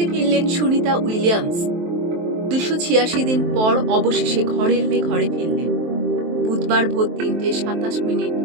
ফিরলেন সুনিতা উইলিয়ামস। ২৮৬ দিন পর অবশেষে ঘরের মেয়ে ঘরে ফিরলেন। বুধবার ভোর ৩:২৭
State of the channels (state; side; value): late; left; 23 ms